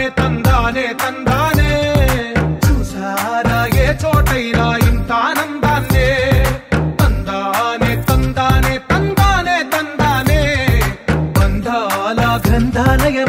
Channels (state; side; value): identical; both; correlation 1.00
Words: తందానే తందానే చూసారా ఏ చోటైనా ఇంత ఆనందాన్నే తందానే తందానే తందానే తందానే బంధాల